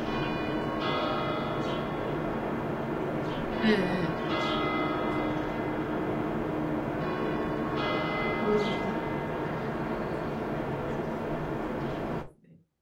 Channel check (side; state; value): both; identical; correlation 1.00